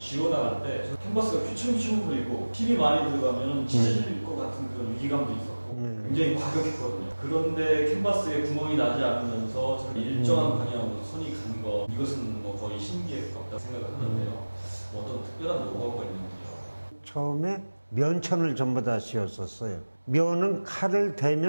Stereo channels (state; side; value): inverted; both; correlation -1.00